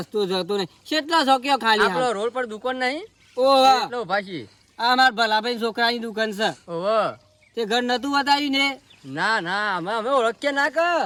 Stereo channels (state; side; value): identical; both; correlation 1.00